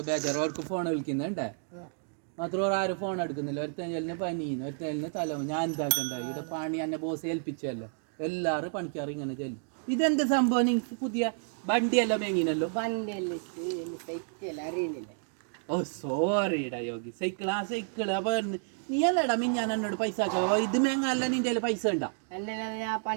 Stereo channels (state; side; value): silent; left; 57 dB below the other